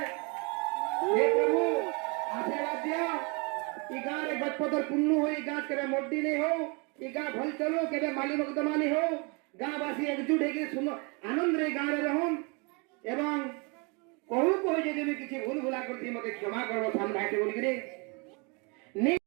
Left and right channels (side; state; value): left; quieter; 31.6 dB